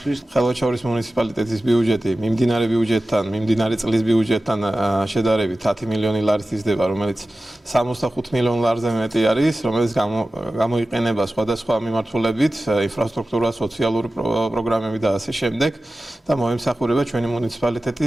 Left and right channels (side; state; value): both; normal; correlation 0.95